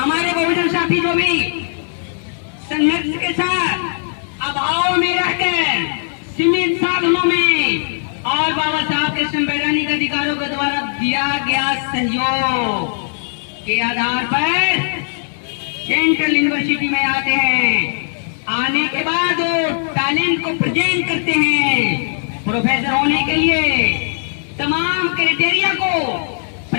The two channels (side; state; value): right; silent; 67 dB below the other